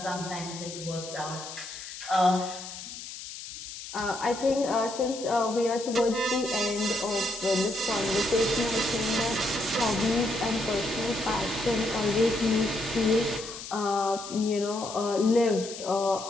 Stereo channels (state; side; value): noise; left; hiss, 11 dB below the sound